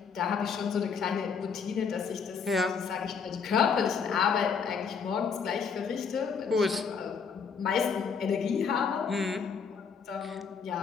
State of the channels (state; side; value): quieter; right; 6.0 dB